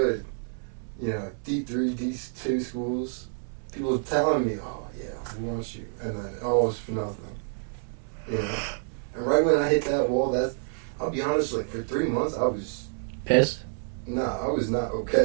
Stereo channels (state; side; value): silent; left; 59 dB below the other